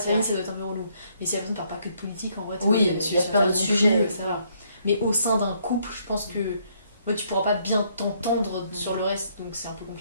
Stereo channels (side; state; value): both; inverted; correlation -0.70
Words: famille vrai. ça doit être un peu relou. Mais si la personne parle pas que de politique en vrai, Oui, tu il y a plein d'autres sujets. ça va. Mais au sein d'un couple, je pense que ouais, tu pourras pas bien t'entendre sur le reste, donc c'est un peu